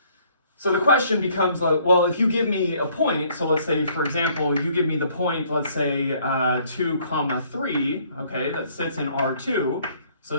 So the question becomes, well, if you give me a point, so let's say, for example, you give me the point, let's say 2, comma, 3, okay, that sits in R2, so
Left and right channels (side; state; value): both; inverted; correlation -0.62